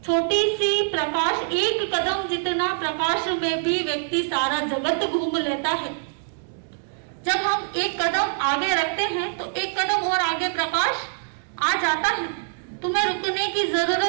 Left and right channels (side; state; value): left; silent; digital silence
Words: छोटी सी प्रकाश, 1 कदम जितना प्रकाश में भी व्यक्ति सारा जगत घूम लेता है। जब हम 1 कदम आगे रखते हैं तो 1 कदम और आगे प्रकाश आ जाता है। तुम्हें रुकने की